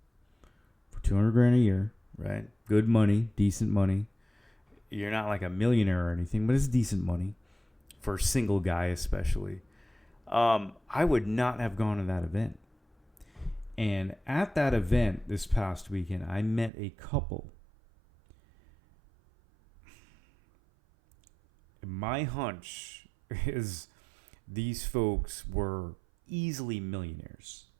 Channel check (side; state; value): left; drops out; at 16.7 s